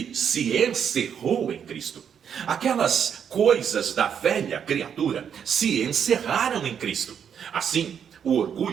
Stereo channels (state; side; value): quieter; left; 8.0 dB